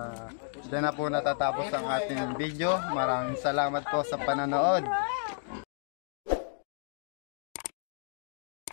dyan na po natatapos ang ating video. Maraming salamat po sa panonood.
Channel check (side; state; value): right; silent; digital silence